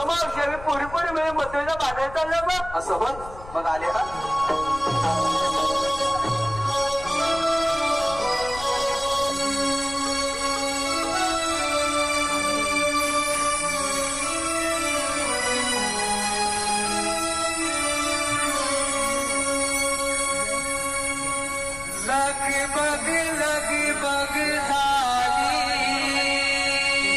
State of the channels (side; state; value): left; noise; rumble, 15 dB below the sound